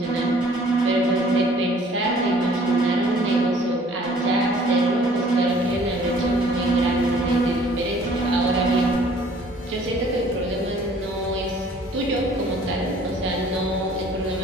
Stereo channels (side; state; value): both; normal; correlation 0.55